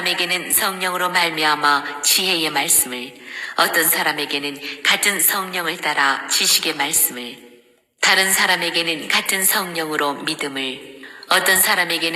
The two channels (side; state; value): both; identical; correlation 1.00